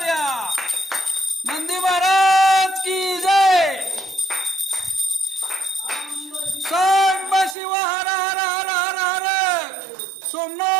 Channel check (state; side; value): drops out; left; at 7.6 s